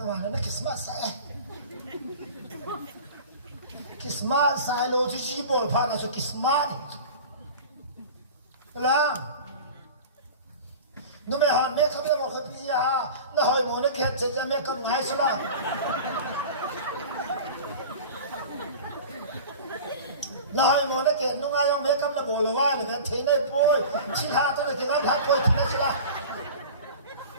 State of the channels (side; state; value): both; inverted; correlation -0.36